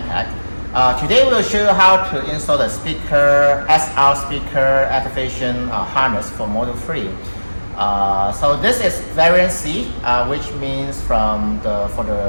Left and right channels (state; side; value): inverted; both; correlation -1.00